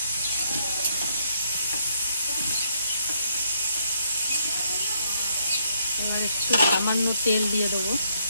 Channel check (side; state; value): both; inverted; correlation -0.72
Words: এবার একটু সামান্য তেল দিয়ে দেবো।